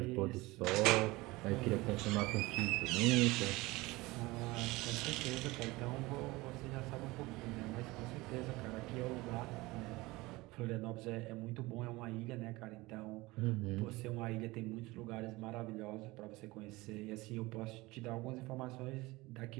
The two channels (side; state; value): left; quieter; 21.3 dB